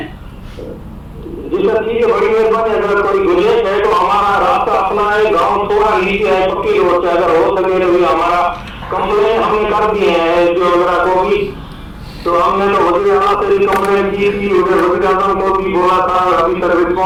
जी सर, ठीक है, बड़ी मेहरबानी। अगर कोई गुंजाइश है तो हमारा रास्ता अपना है, गाँव थोड़ा नीचे है, पक्की रोड से अगर हो सके तो हमारा कंप्लेन हमने कर दिए हैं जो मेरा को भी, तो हमने तो वजीर आला से भी कंप्लेन की थी, वजीर आला को भी बोला था, अभी तक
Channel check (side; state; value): both; identical; correlation 1.00